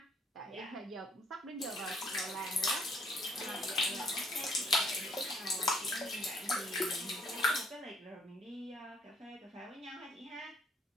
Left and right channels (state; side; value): normal; both; correlation 0.66